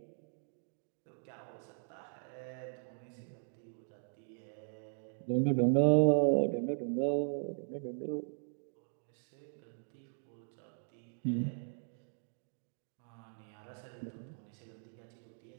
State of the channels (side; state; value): left; silent; digital silence